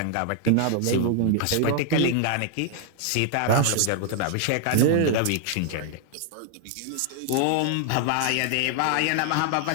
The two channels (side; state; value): both; different; correlation 0.00